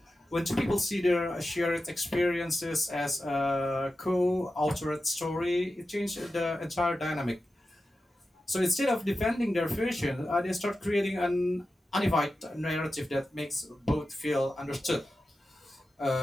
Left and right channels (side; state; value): both; normal; correlation 0.92